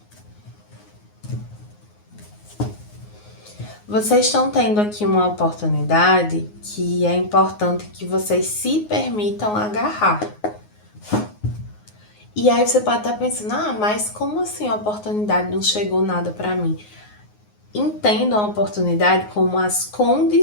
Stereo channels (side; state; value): right; late; 9.5 ms